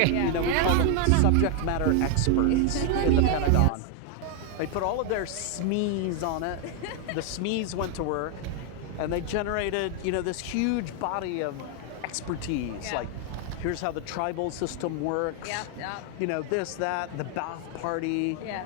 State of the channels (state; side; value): different; both; correlation 0.00